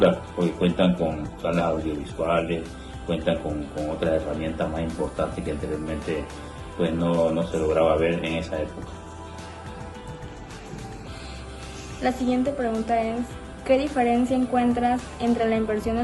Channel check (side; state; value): both; identical; correlation 1.00